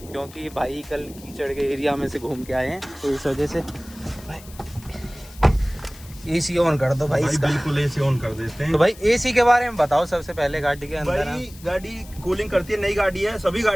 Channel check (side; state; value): left; noise; hiss, 20 dB below the sound